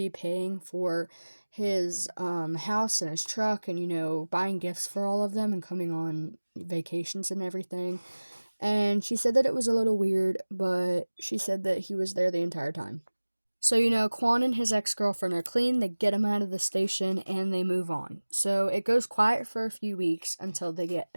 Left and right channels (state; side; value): inverted; both; correlation -1.00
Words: paying for his house and his truck and, you know, buying gifts for all of them and coming on vacations and everything. And she said that it was a little weird, but she said that he was there the entire time. So, you know, Quan and his ex-girlfriend are clean, they get him out of the station, and they move on. So it goes quiet for a few weeks until they get